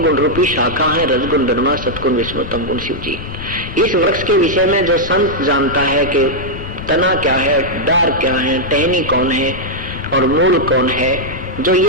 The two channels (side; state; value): left; noise; rumble, 11 dB below the sound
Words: गुण रूपी शाखा है, रजगुण ब्रह्मा, सतगुण विष्णु, तमगुण शिव जी। इस वृक्ष के विषय में जो संत जानता है कि तना क्या है, डार क्या है, टहनी कौन है और मूल कौन है, जो